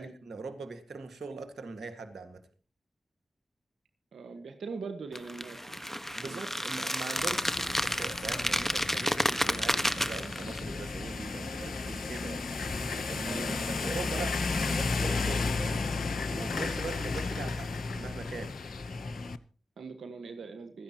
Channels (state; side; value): normal; both; correlation 0.88